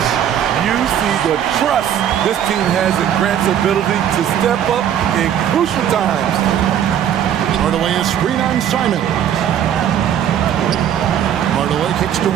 You see the trust this team has in Grant's ability to step up in crucial times. Hardaway is screen on Simon. Hardaway kicks to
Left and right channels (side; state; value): left; quieter; 9.8 dB